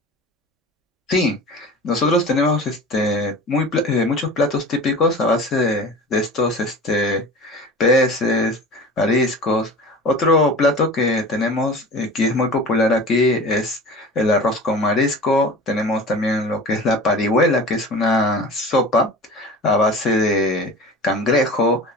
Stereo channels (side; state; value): both; normal; correlation 0.37